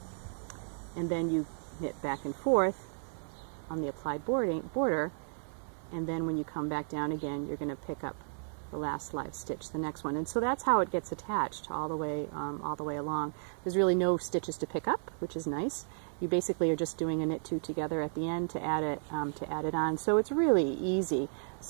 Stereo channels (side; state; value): left; silent; digital silence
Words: And then you knit back and forth on the applied border, and then when you come back down again, you're going to pick up the last live stitch, the next one. And so that's how it gets attached all the way along. There's really no stitches to pick up, which is nice. You basically are just doing a knit 2 together at the end to add it on. So it's really easy.